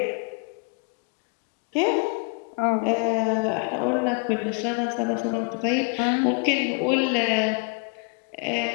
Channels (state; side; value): quieter; right; 38.1 dB